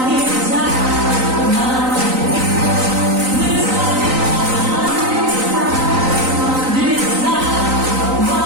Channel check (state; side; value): late; left; 3.9 ms